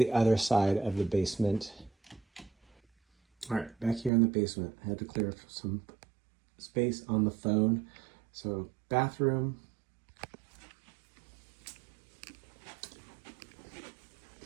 other side of the basement. All right, back here in the basement, I had to clear some space on the phone. So bathroom.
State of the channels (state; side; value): drops out; left; at 4.1 s